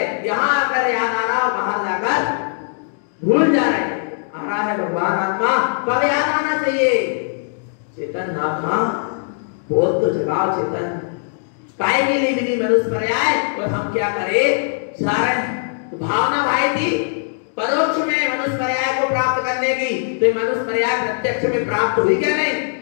यहाँ आकर याद आ रहा, बाहर जाकर भूल जा रहे। आ रहा है भगवान आत्मा, कब याद आना चाहिए, चेतन आत्मा बोल तो जगाओ। चेतन काय के लिए मिली मनुष्य पर्याय, और हम क्या करें, सारण भावना भाई थी परोक्ष में मनुष्य पर्याय को प्राप्त करने की, तो मनुष्य पर्याय प्रत्यक्ष में प्राप्त हुई क्या नहीं।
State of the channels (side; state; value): right; silent; digital silence